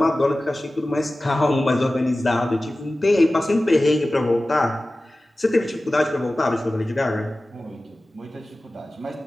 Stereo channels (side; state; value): both; normal; correlation 0.96